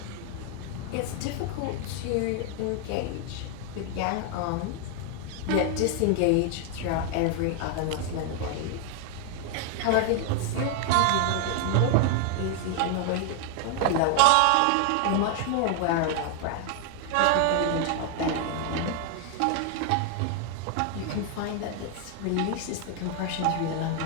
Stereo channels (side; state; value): both; different; correlation 0.00